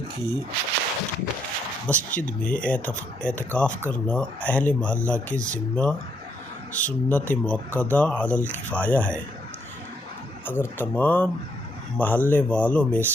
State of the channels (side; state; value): both; normal; correlation 0.74